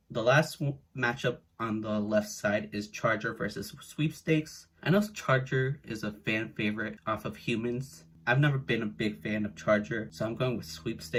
the last matchup on the left side is Charger versus Sweepstakes. I know Charger is a fan favorite off of Humans. I've never been a big fan of Charger, so I'm going with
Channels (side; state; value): both; identical; correlation 1.00